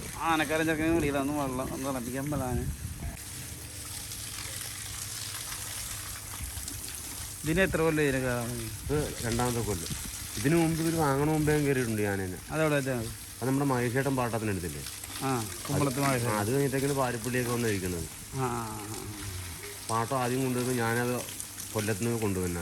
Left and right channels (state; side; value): identical; both; correlation 1.00